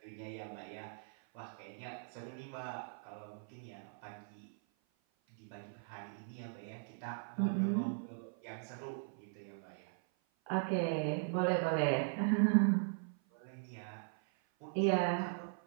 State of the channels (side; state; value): left; silent; 51 dB below the other